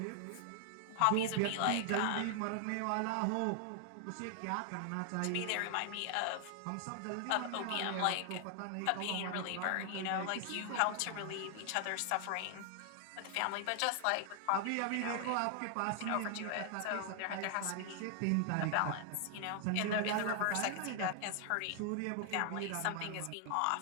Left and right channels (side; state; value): both; different; correlation 0.00